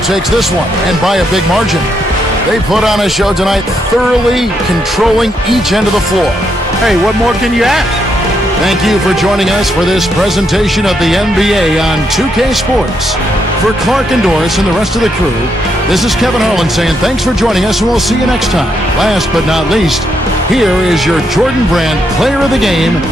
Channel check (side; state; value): both; normal; correlation 0.78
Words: takes this one, and by a big margin. They put on a show tonight, thoroughly controlling each end of the floor. Hey, what more can you ask? Thank you for joining us for this presentation of the NBA on 2K Sports. For Clark and Doris and the rest of the crew, this is Kevin Harlan saying thanks for joining us, and we'll see you next time. Last but not least, here is your Jordan Brand Player of the Game,